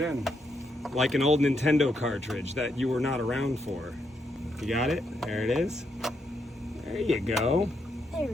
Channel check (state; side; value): normal; both; correlation 0.78